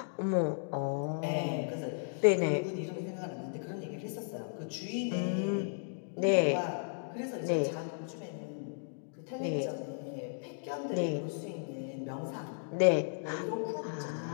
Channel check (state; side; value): silent; right; digital silence